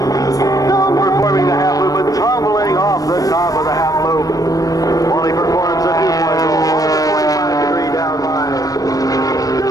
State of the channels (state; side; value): late; right; 0.17 ms